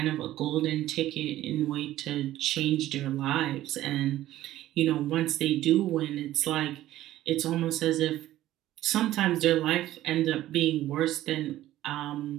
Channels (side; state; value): left; quieter; 14.3 dB